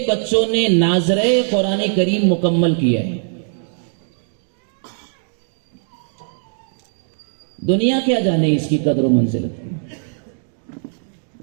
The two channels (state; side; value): silent; left; digital silence